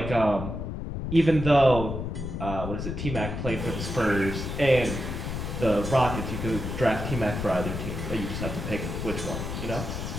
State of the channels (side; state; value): left; noise; rumble, 5 dB below the sound